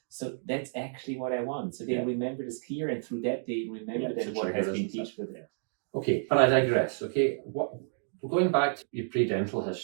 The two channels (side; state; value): left; silent; digital silence